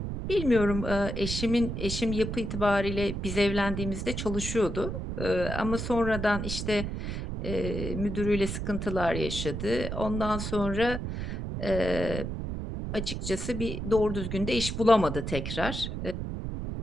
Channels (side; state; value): right; noise; rumble, 4 dB below the sound